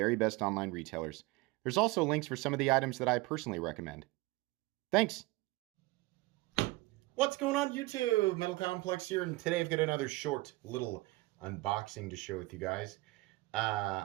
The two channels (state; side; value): quieter; left; 21.8 dB